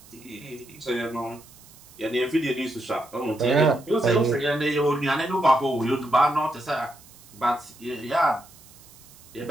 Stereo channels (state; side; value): noise; right; hiss, 23 dB below the sound